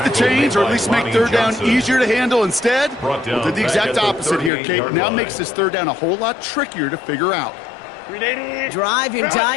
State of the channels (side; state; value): right; drops out; at 4.5 s